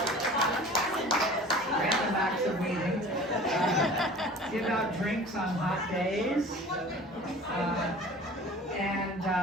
acts of weeding. Give out drinks on hot days.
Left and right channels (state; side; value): normal; both; correlation 0.43